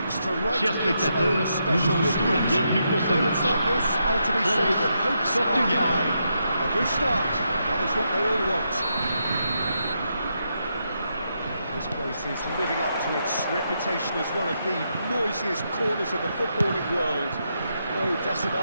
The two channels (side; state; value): both; inverted; correlation -0.82